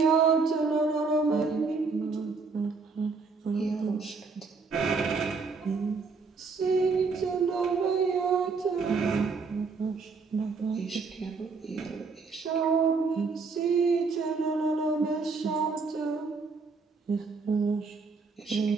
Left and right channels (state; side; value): quieter; left; 4.6 dB